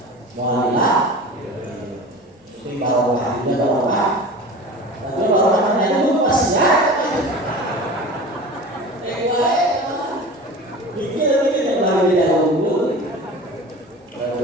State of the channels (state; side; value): normal; both; correlation 0.36